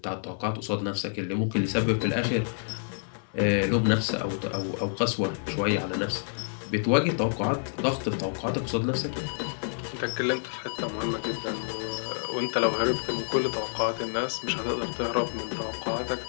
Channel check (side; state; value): right; silent; 59 dB below the other